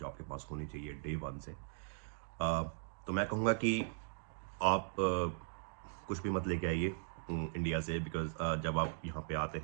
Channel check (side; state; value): left; silent; digital silence